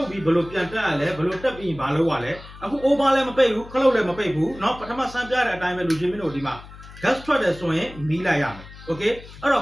တ်ပြီးဘလို့ပြန်တက်ရလဲဘလို့တက်ပြီးဘာလို့ရလဲအခု over လည်းမပိတ်ဘူးခလုတ်လည်းမပိတ်ဘူးနော်ပထမစမ်းပြတဲ့အတိုင်းပဲလူချင်းမင်းတို့ဒီမှာ gas ထွက်တယ်ဆိုရင်မီးလိုက်ရမယ် okay အဲ့တော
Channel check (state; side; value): noise; left; hum, 17 dB below the sound